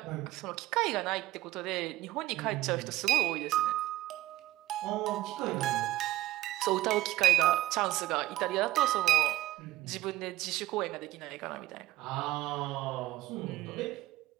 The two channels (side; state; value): left; quieter; 15.4 dB